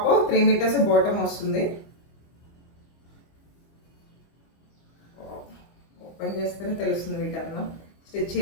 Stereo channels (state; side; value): late; right; 25 ms